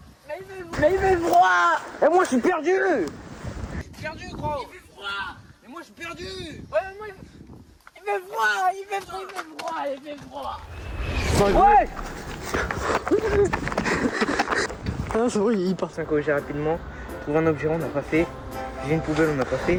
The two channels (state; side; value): identical; both; correlation 1.00